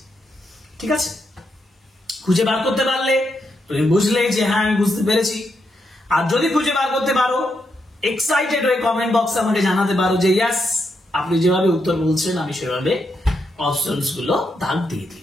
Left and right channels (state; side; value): normal; both; correlation 0.82